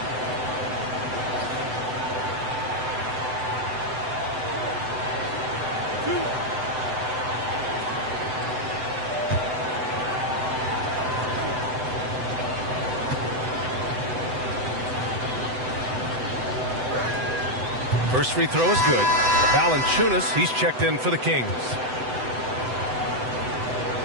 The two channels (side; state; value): left; late; 7.9 ms